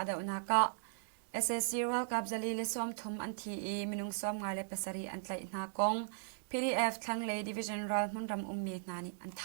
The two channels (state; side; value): silent; left; 53 dB below the other